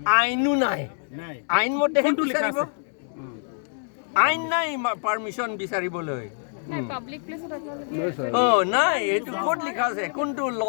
আইনো নাই আইন মতেহে বিচাৰিব আইন নাই পাৰমিশ্যন বিচাৰিবলৈ পাব্লিক প্লেসত নাই এইটো ক'ত লিখা আছে কোনটো ল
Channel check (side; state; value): right; silent; 58 dB below the other